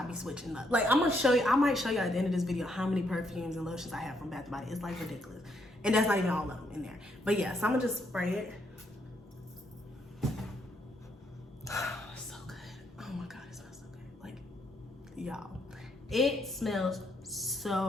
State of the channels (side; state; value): both; normal; correlation 0.74